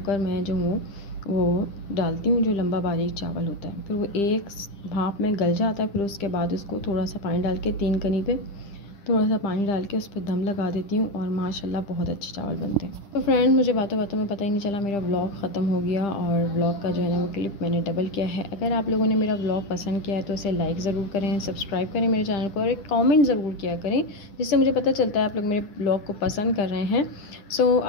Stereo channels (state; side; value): late; right; 10 ms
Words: मैं जो हूँ वो डालती हूँ, जो लंबा बारीक चावल होता है। फिर वो एक भाप में गल जाता है। फिर उसके बाद उसको थोड़ा सा पानी डाल के 3 कनी पे थोड़ा सा पानी डाल के उस पर दम लगा देती हूँ और माशाल्लाह बहुत अच्छे चावल बनते हैं। तो फ्रेंड, मुझे बातों बातों में पता ही नहीं चला मेरा व्लॉग ख़त्म हो गया और व्लॉग का जो है ना वो क्लिप मैंने डबल किया है। अगर आप लोगों ने मेरा व्लॉग पसंद किया है तो उसे लाइक ज़रूर करें, सब्सक्राइब करें मेरे चैनल को और एक कॉमेंट ज़रूर किया करें, जिससे मुझे पता चलता है आप लोग मेरे व्लॉग को पसंद कर रहे हैं। सो